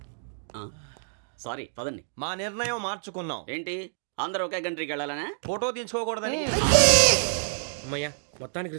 సారీ, పదండి. మా నిర్ణయం మార్చుకున్నాం. ఏంటి, అందరూ ఒకే కంట్రీకి వెళ్ళాలనే? ఫోటో తీసుకోకూడదని. అమ్మయ్యా, మొత్తానికి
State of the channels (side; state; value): left; silent; digital silence